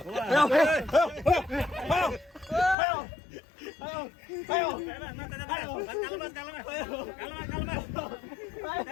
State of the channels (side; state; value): right; drops out; at 2.8 s